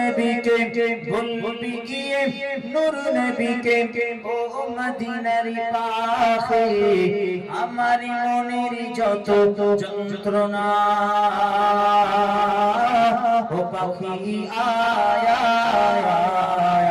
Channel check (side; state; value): both; identical; correlation 1.00